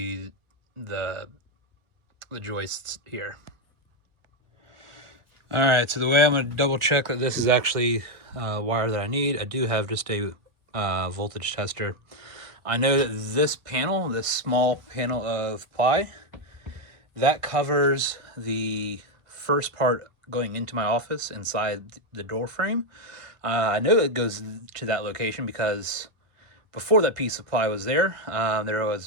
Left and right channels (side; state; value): left; late; 1.5 ms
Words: the joists here. All right, so the way I'm going to double check that this is actually wire that I need, I do have just a voltage tester. I know that this panel, this small panel of ply, that covers the first part going into my office inside the door frame. I know it goes to that location because before that piece of ply was there, there